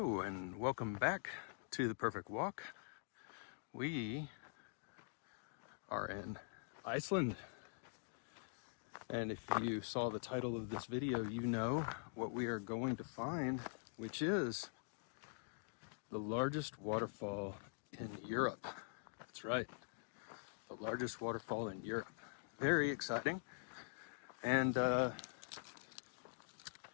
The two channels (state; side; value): silent; right; digital silence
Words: and welcome back to The Perfect Walk. We are in Iceland, and if you saw the title of this video, you know what we are going to find, which is the largest waterfall in Europe. That's right, the largest waterfall in Europe. Very exciting, and as